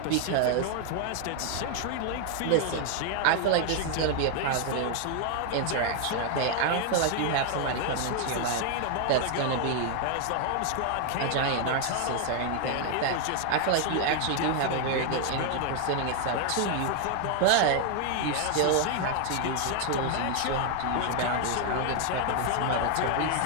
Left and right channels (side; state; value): both; different; correlation 0.00